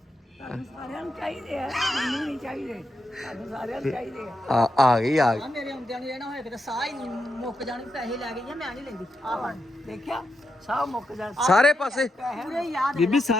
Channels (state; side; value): normal; both; correlation 0.85